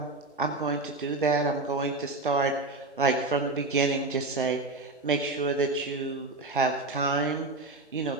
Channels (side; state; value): left; quieter; 3.2 dB